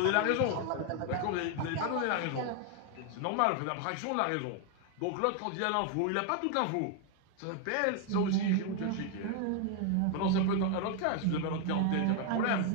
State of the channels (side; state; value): both; different; correlation 0.01